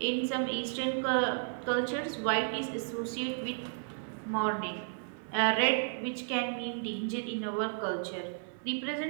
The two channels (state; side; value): silent; left; 56 dB below the other